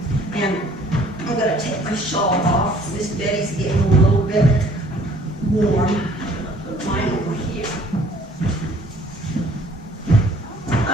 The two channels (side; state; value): both; normal; correlation 0.57